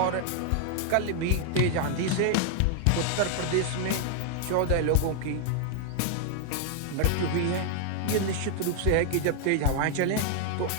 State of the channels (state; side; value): different; both; correlation 0.00